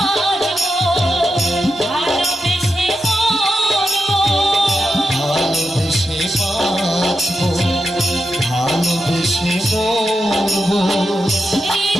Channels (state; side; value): normal; both; correlation 0.88